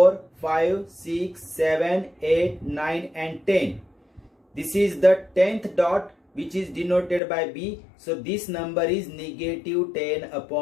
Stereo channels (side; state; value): right; drops out; at 7.2 s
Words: 5, 6, 7, 8, 9 and 10. This is the 10th dot which is denoted by B. So this number is negative 10